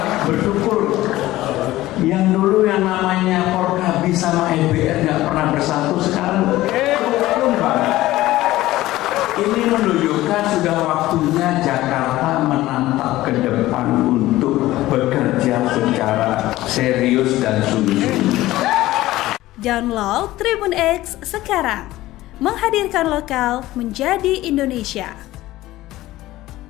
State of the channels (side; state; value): right; quieter; 16.5 dB